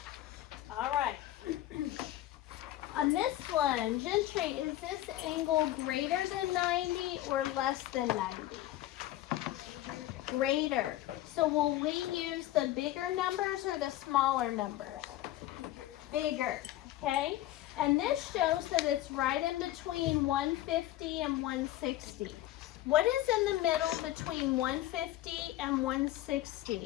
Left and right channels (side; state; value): right; quieter; 14.6 dB